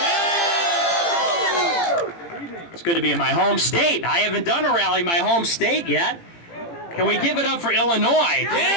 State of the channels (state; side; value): late; right; 18 ms